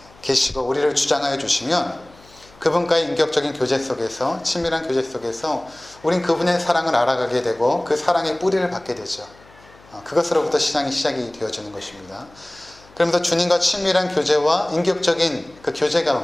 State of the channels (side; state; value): left; noise; hum, 26 dB below the sound